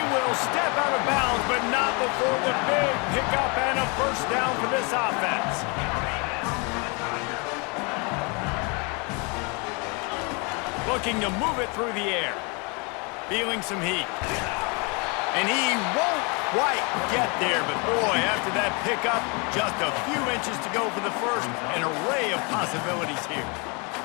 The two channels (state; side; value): quieter; right; 31.6 dB